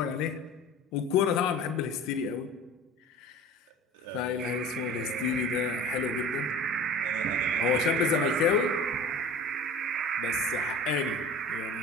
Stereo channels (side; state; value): both; normal; correlation 0.39